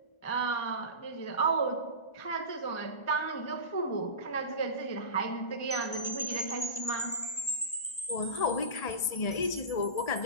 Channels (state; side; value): late; right; 1.3 ms